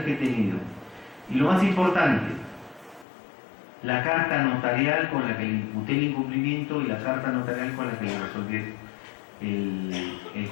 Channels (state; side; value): drops out; right; at 3.1 s